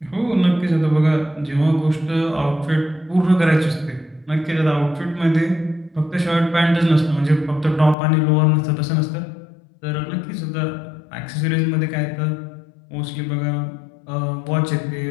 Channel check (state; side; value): drops out; right; at 8.0 s